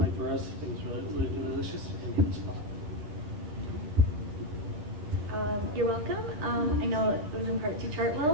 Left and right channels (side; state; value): left; late; 10 ms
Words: for us. It was really, really delicious and hit the spot. You're welcome. I know it was in part to